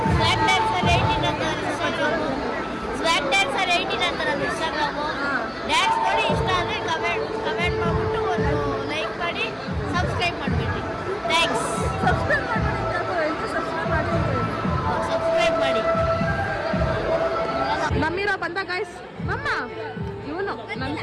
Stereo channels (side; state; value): both; identical; correlation 1.00